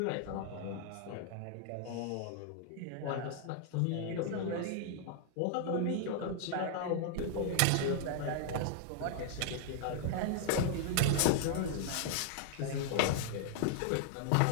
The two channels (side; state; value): both; different; correlation 0.00